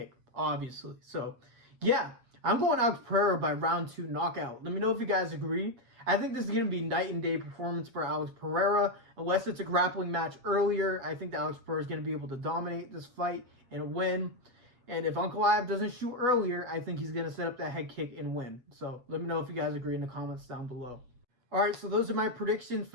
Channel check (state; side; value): late; left; 8.1 ms